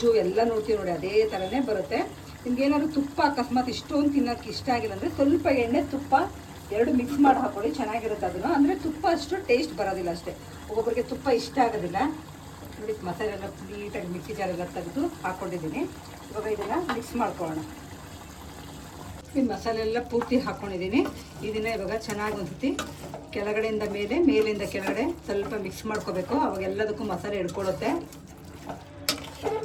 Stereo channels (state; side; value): identical; both; correlation 1.00